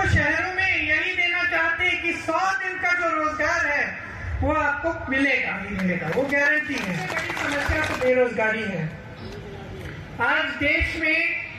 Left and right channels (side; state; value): both; identical; correlation 1.00